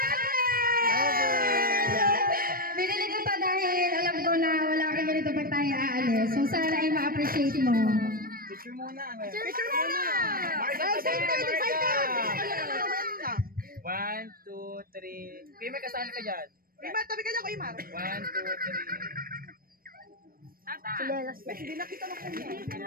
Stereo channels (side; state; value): left; late; 0.42 ms